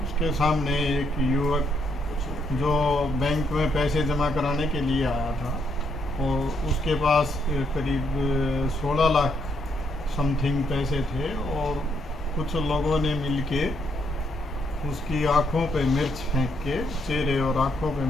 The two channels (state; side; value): normal; both; correlation 0.75